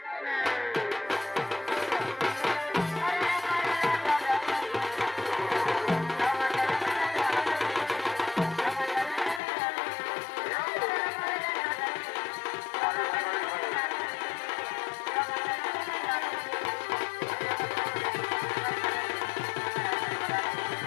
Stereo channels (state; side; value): drops out; right; at 9.4 s